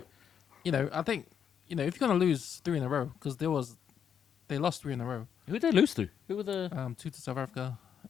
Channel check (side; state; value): right; quieter; 8.0 dB